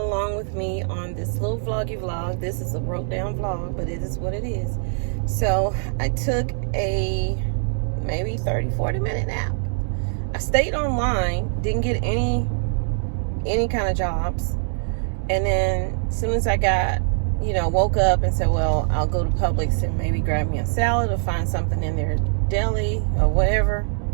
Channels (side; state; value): left; silent; 61 dB below the other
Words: with me on this little vloggy vlog. This is a broke down vlog, but it is what it is. So I took a maybe 30-40 minute nap. I stayed online, didn't get any kind of jobs. And then as soon as I got, woke up and said, well, I'll go to Publix and maybe grab me a salad or find something in their deli or whatever.